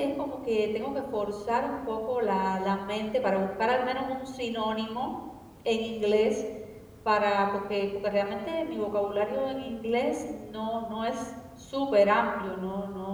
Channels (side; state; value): both; identical; correlation 1.00